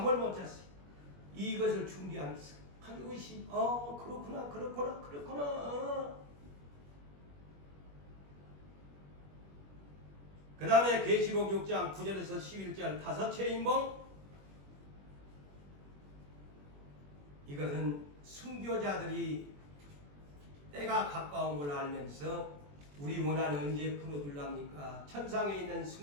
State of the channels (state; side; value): late; left; 21 ms